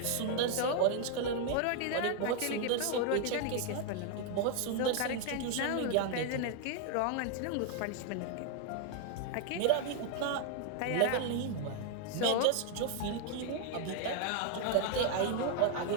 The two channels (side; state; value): both; different; correlation 0.00